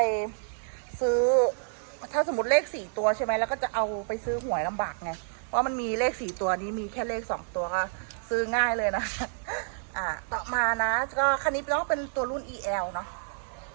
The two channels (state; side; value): silent; left; digital silence